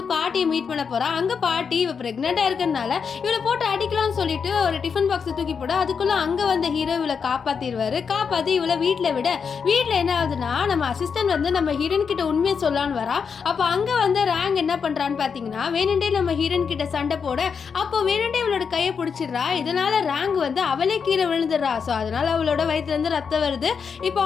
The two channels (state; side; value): quieter; right; 6.2 dB